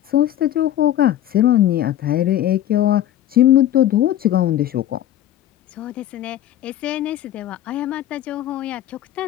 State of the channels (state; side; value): quieter; right; 12.3 dB